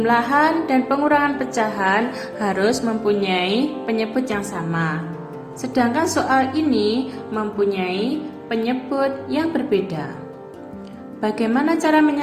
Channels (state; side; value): identical; both; correlation 1.00